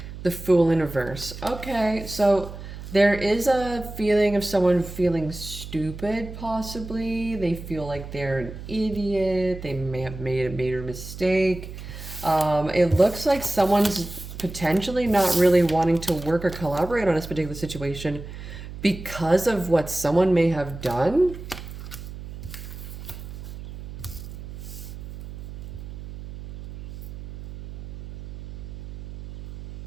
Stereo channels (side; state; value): right; noise; hum, 11 dB below the sound